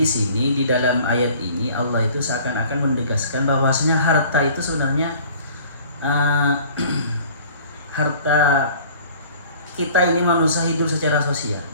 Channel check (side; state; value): both; inverted; correlation -0.49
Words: sini di dalam ayat ini Allah itu seakan-akan menegaskan bahwasanya harta itu sebenarnya harta kita ini manusia hidup secara sosial,